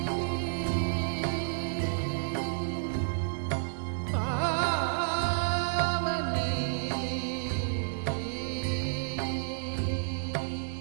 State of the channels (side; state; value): left; silent; digital silence